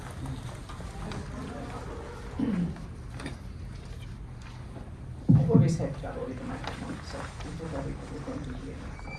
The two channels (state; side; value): identical; both; correlation 1.00